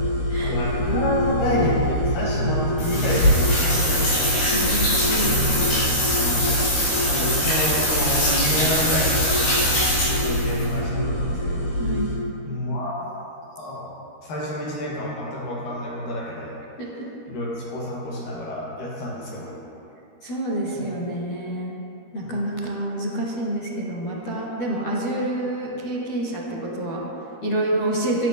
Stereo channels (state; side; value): late; right; 13 ms